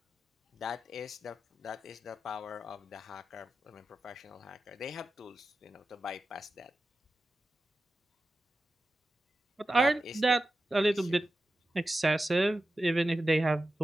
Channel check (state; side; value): normal; both; correlation 0.93